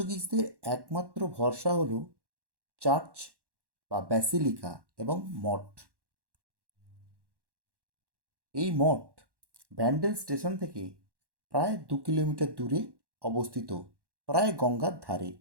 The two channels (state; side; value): late; left; 1.1 ms